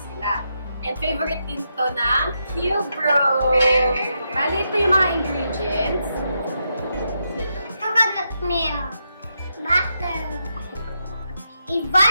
And favorite din to ng Qbros! Bali ito yung mga ingredients. Coconut milk, butter,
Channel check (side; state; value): both; inverted; correlation -0.83